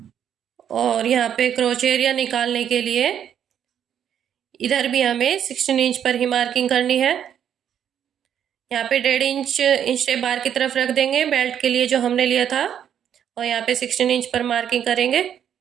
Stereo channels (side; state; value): left; quieter; 9.2 dB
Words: और यहाँ पे क्रोच एरिया निकालने के लिए इधर भी हमें 16 इंच पर ही मार्किंग करनी है। यहाँ पे 1.5 इंच टेप बाहर की तरफ रख देंगे बेल्ट के लिए जो हमने लिया था, और यहाँ पे 16 इंच पर मार्किंग करेंगे।